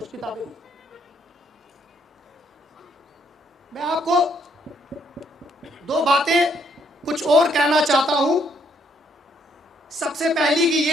किताबें मैं आपको दो बातें कुछ और कहना चाहता हूं। सबसे पहली की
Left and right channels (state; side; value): normal; both; correlation 0.70